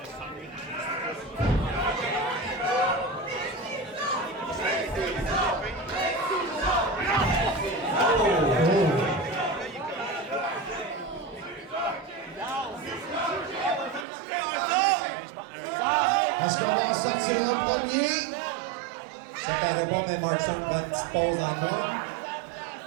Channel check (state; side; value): drops out; left; at 14.1 s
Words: Est-ce qu'on va en sortir un premier? Ça paraît pas, mais Markson prend une petite pause en moi.